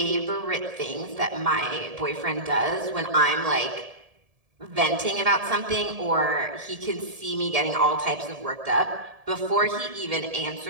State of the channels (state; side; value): late; left; 1.7 ms